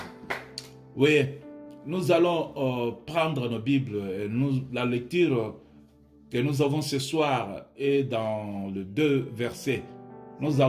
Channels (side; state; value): both; identical; correlation 1.00